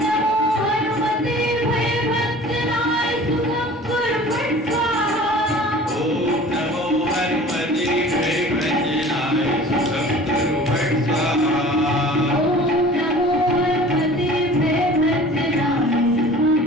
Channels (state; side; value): normal; both; correlation 0.44